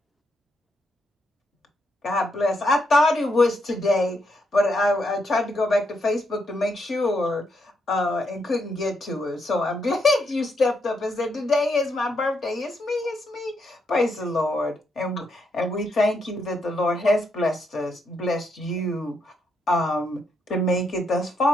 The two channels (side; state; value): both; normal; correlation 0.78